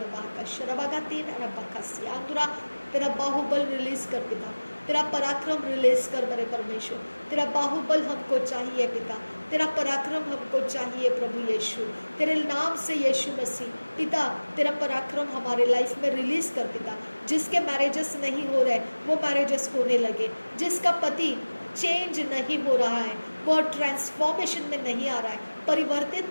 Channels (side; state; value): both; inverted; correlation -1.00